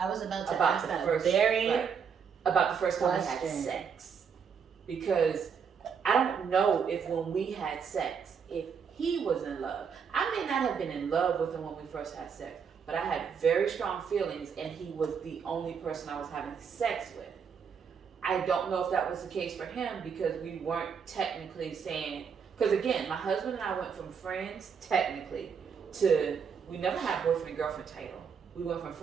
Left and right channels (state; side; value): quieter; left; 6.6 dB